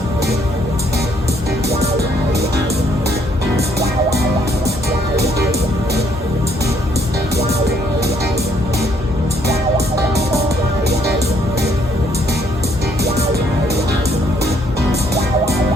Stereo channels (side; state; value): both; normal; correlation 0.67